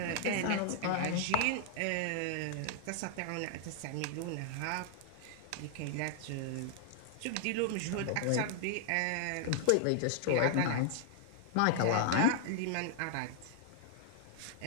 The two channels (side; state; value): both; different; correlation 0.00